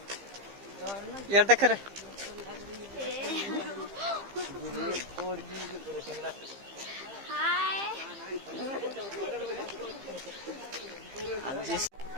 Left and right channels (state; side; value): late; left; 15 ms